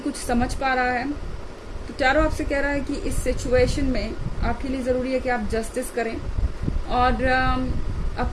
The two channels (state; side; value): identical; both; correlation 1.00